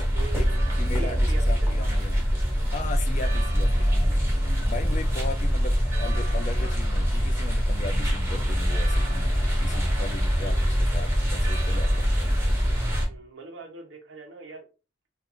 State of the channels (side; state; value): both; normal; correlation 0.94